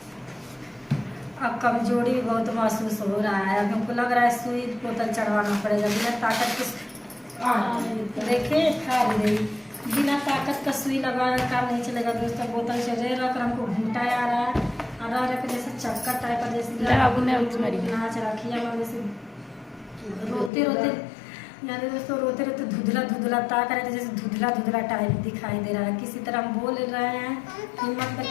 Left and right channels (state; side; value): drops out; right; at 20.5 s